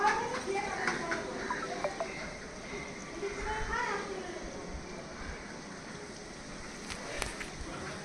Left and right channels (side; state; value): both; identical; correlation 1.00